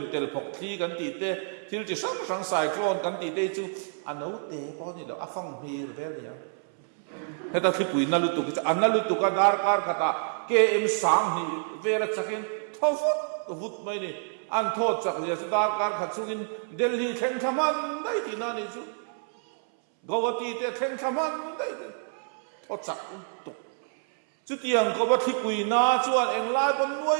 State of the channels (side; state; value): left; silent; 59 dB below the other